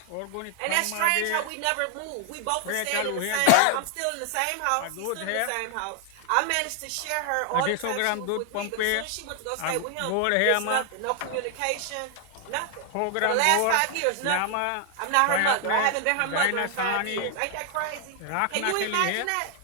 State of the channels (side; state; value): both; different; correlation 0.00